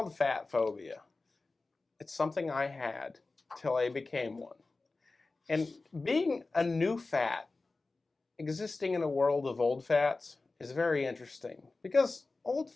fat phobia. It's something I had till I became one. And being a new fat, existing in a world of old fats, is very interesting. Because old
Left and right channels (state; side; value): quieter; right; 3.5 dB